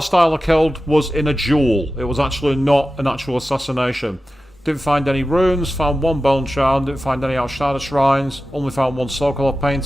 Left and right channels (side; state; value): both; normal; correlation 0.93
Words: I killed was in a duel. It was actually not an actual assassination. Didn't find any runes, found 1 bone charm, didn't find any outside of shrines, only found 1 Sokolov